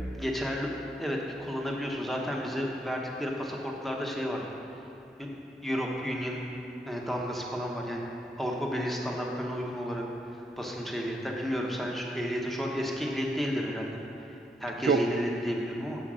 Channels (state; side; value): normal; both; correlation 0.77